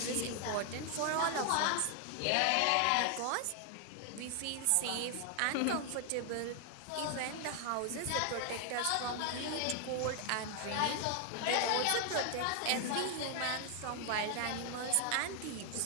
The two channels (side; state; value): both; different; correlation 0.00